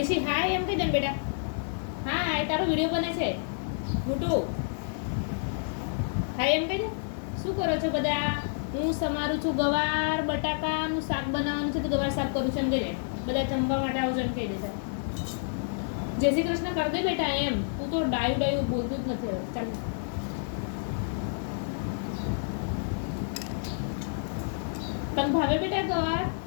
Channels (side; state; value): right; silent; digital silence